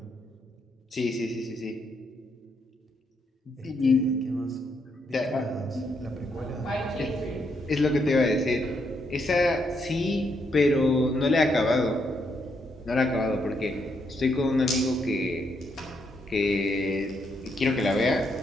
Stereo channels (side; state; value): both; normal; correlation 0.77